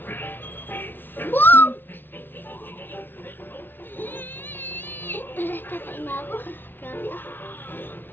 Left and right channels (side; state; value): right; late; 0.098 ms